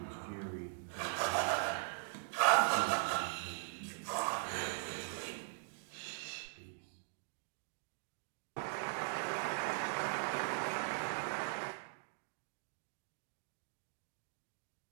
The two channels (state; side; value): silent; left; digital silence